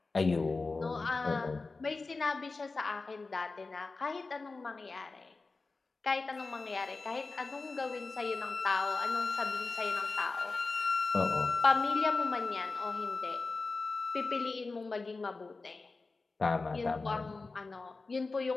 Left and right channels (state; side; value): quieter; right; 3.8 dB